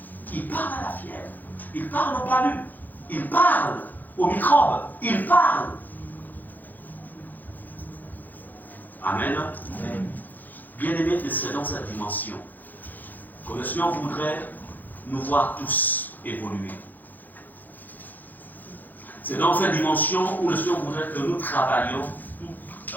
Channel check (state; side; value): late; right; 0.085 ms